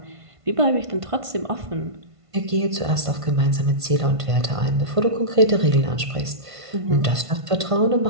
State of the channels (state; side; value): late; left; 1.5 ms